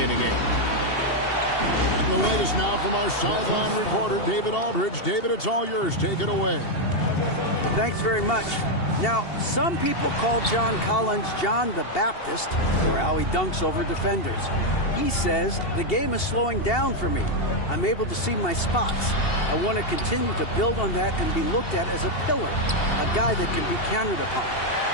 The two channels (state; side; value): late; right; 2.7 ms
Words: in a game. And the latest now from our sideline reporter, David Aldridge. David, it's all yours. Take it away. Thanks very much. Now, some people call John Collins John the Baptist for how he dunks over defenders. He says, the game is slowing down for me. I'm able to see my spots. I want to continue to build on that and be looked at as a pillar, a guy that can be counted upon.